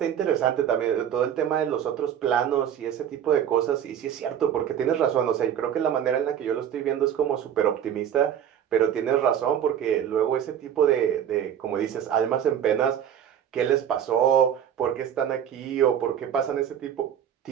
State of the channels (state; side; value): quieter; left; 9.4 dB